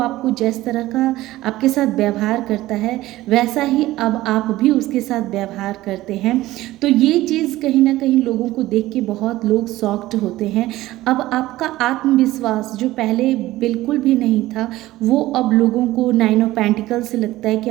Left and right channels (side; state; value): left; quieter; 16.6 dB